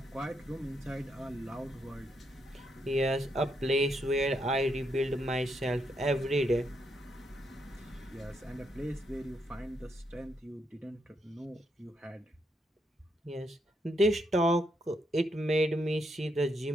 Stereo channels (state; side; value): normal; both; correlation 0.78